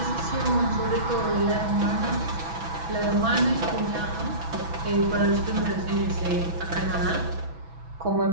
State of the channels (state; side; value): late; left; 6.1 ms